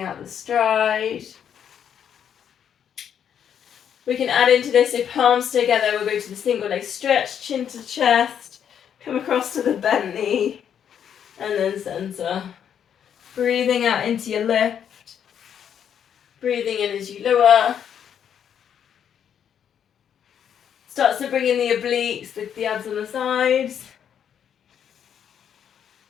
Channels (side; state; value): right; quieter; 8.7 dB